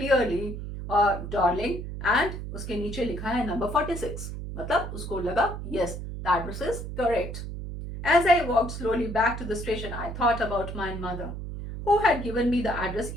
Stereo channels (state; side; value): noise; right; hum, 7 dB below the sound